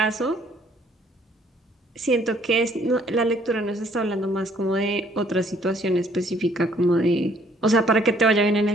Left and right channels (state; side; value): normal; both; correlation 0.63